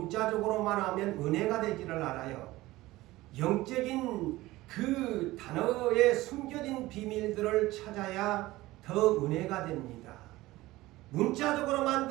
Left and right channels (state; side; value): quieter; left; 18.2 dB